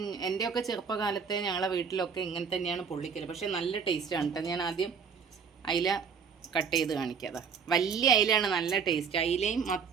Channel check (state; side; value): quieter; left; 6.2 dB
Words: എൻ്റെയൊക്കെ ചെറുപ്പകാലത്തെ ഞങ്ങളെ വീട്ടിലൊക്കെ ഇങ്ങനെ തന്നെയാണ് പൊള്ളിക്കൽ. പക്ഷേ നല്ല ടേസ്റ്റാണ് കേട്ടോ. ഞാൻ ആദ്യം അയില കട്ട് ചെയ്ത് കാണിക്കാതെ. വലിയ അയിലാണ് നല്ല ടേസ്റ്റ്. അയിലയും